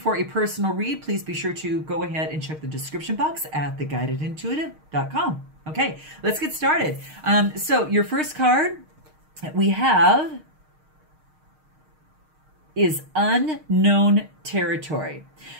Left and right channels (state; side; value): late; left; 6.5 ms